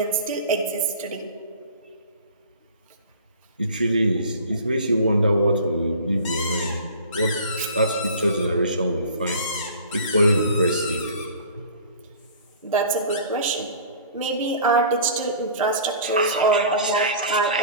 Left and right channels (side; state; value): both; inverted; correlation -0.43